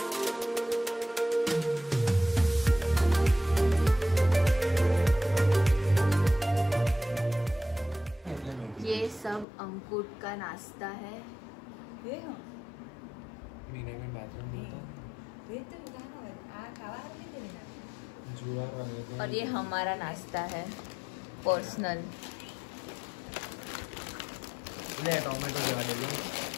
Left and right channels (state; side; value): drops out; right; at 9.5 s